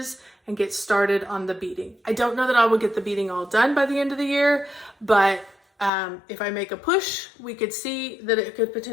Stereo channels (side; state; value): right; drops out; at 5.9 s